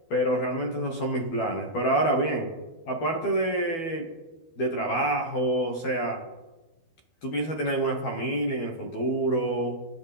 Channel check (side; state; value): right; late; 12 ms